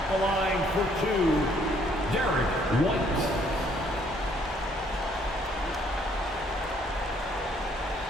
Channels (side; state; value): both; normal; correlation 0.65